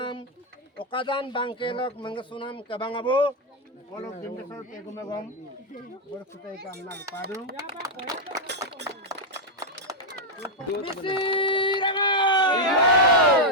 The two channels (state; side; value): normal; both; correlation -0.01